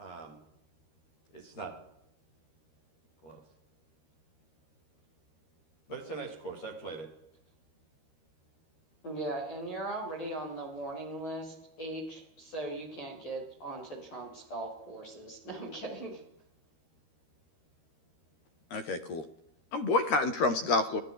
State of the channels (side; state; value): right; late; 13 ms